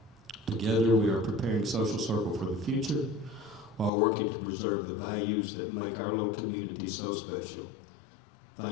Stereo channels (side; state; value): right; drops out; at 3.9 s